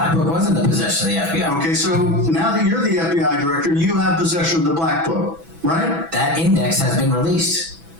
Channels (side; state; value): left; late; 6.1 ms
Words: Book was in the possession of the FBI. Okay, so now that you're the FBI director, you have possession of the Black Book, right? That index has been released.